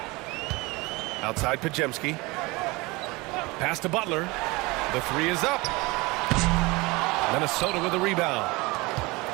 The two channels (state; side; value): quieter; left; 23.8 dB